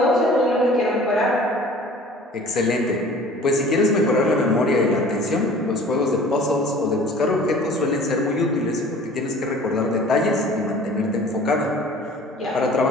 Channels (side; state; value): both; normal; correlation 0.47